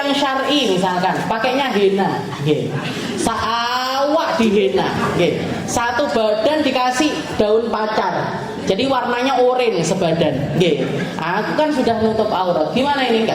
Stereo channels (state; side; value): identical; both; correlation 1.00